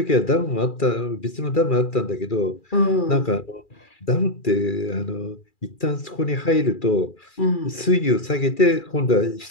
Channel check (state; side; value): late; right; 2.4 ms